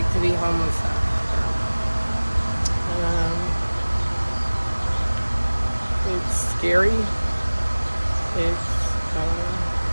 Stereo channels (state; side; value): inverted; both; correlation -1.00